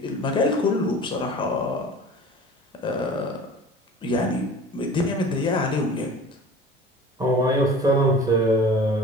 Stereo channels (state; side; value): normal; both; correlation 0.41